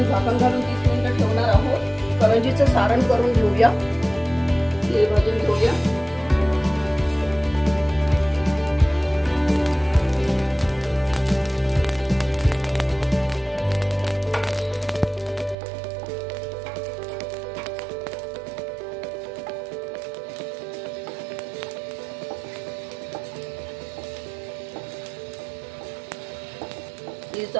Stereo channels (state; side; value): drops out; left; at 15.6 s